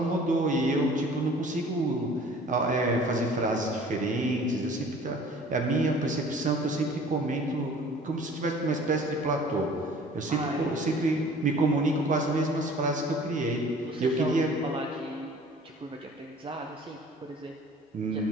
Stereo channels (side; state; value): both; normal; correlation 0.49